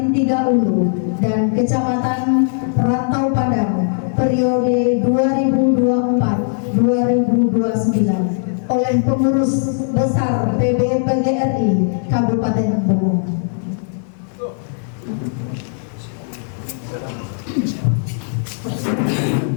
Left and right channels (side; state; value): right; silent; digital silence